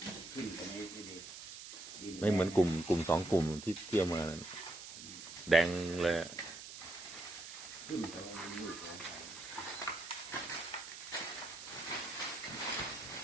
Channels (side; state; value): right; noise; hiss, 12 dB below the sound